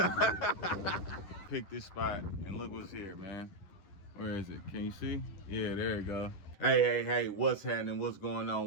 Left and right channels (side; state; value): right; late; 10 ms